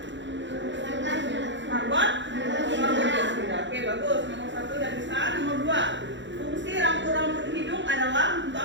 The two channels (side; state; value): left; late; 0.53 ms